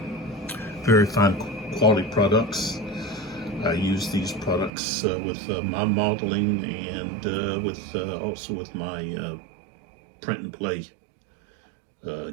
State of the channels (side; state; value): left; drops out; at 4.7 s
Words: Very fine quality products. I use these products with my modeling and also with my print and play